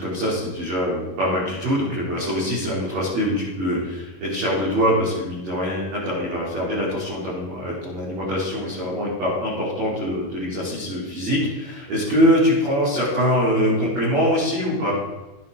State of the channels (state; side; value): late; left; 22 ms